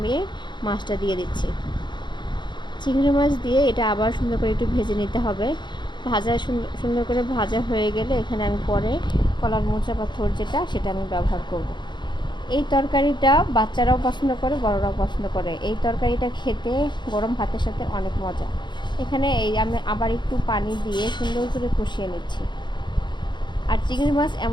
মাছটা দিয়ে দিচ্ছি। চিংড়ি মাছ দিয়ে এটা আবার সুন্দর করে একটু ভেজে নিতে হবে। ভাজা সুন্দর করে ভাজা হয়ে গেলে এখানে আমি পরে কলার মোচা বা থোড় যেটা সেটা আমি ব্যবহার করব। এই তরকারিটা বাচ্চারাও পছন্দ করে, বড়রাও পছন্দ করে। এই তরকারিটা খেতে গরম ভাতের সাথে অনেক মজা। এখানে আমি আবার একটু পানি দিয়ে সুন্দর করে কষিয়ে নিচ্ছি। আর চিংড়ি মাছ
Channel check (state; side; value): late; right; 0.22 ms